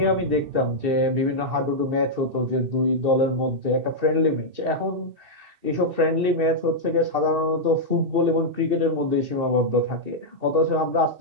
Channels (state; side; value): late; left; 2.7 ms